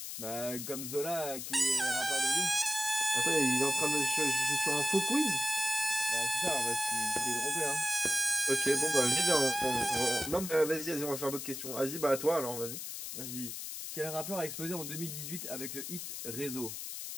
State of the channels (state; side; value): noise; left; hiss, 7 dB below the sound